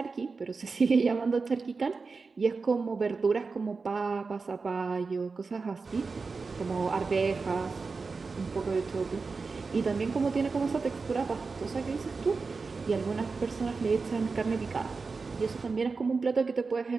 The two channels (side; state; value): left; quieter; 4.4 dB